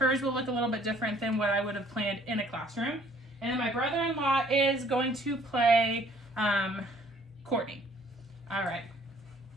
will look a little bit different than what I would have planned in a classroom. And then my brother-in-law is going to play Courtney. All right,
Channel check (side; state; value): both; normal; correlation 0.59